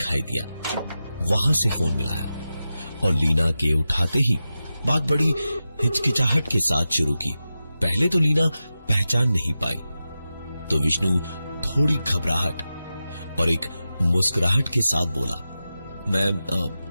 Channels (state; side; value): inverted; both; correlation -0.92